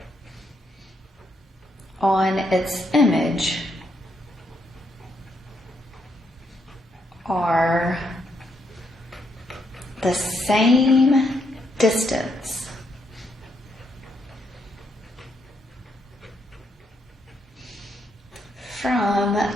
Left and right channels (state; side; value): normal; both; correlation 0.77